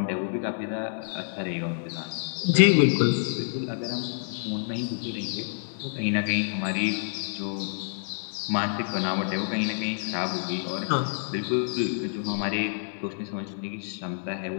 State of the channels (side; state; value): right; silent; digital silence